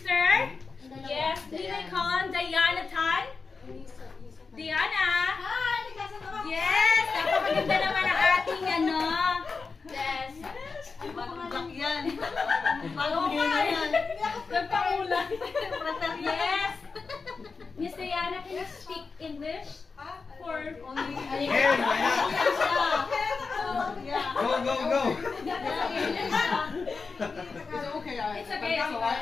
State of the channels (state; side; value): quieter; right; 4.6 dB